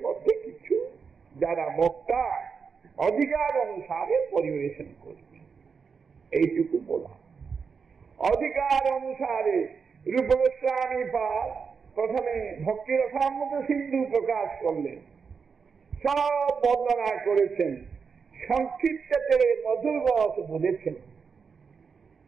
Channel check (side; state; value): left; quieter; 5.7 dB